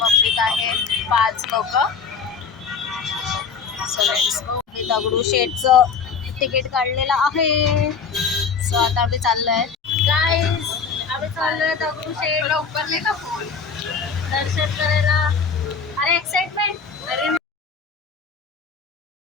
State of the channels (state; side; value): quieter; right; 5.7 dB